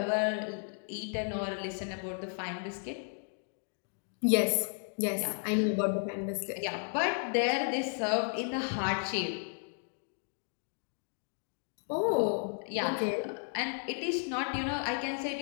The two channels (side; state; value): right; silent; 55 dB below the other